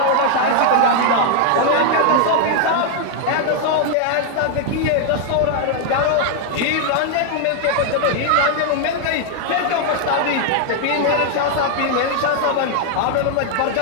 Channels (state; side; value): different; both; correlation 0.00